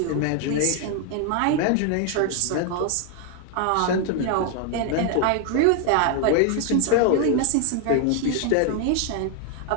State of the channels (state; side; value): different; both; correlation 0.00